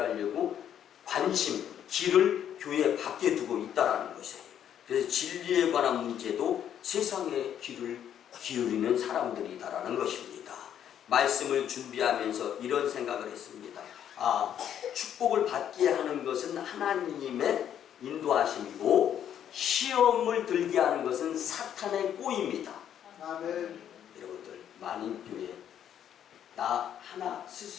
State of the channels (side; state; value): right; quieter; 9.7 dB